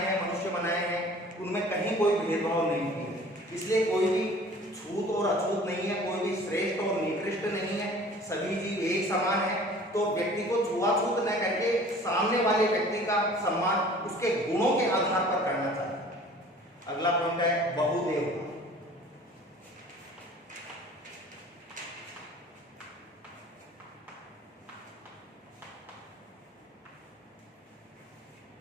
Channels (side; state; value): both; normal; correlation 0.47